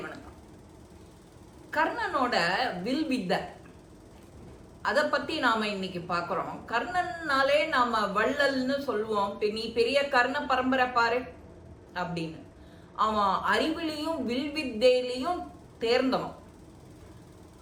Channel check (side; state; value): both; identical; correlation 1.00